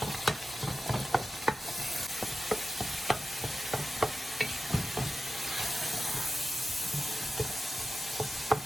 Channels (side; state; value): both; normal; correlation 0.93